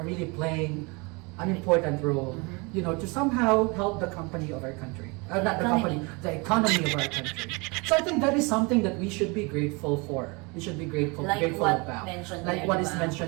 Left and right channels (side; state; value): left; quieter; 28.6 dB